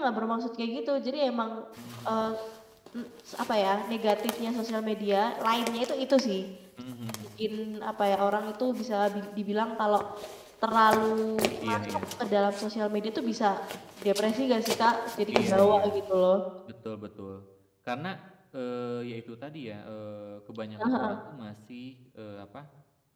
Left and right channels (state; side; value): identical; both; correlation 1.00